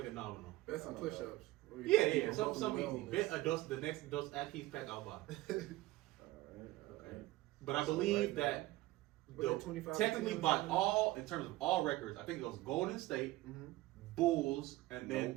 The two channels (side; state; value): left; quieter; 18.0 dB